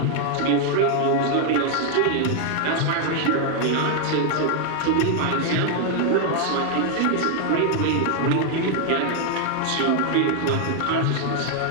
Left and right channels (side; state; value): both; different; correlation 0.00